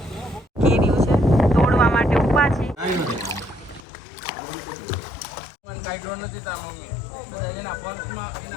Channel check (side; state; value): right; drops out; at 3.9 s